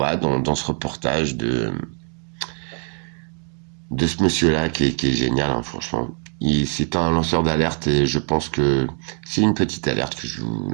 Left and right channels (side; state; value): left; quieter; 38.7 dB